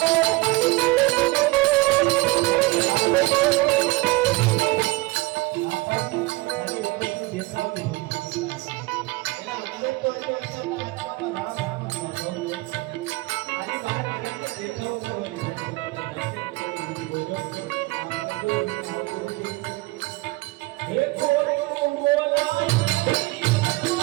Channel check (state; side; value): quieter; left; 22.4 dB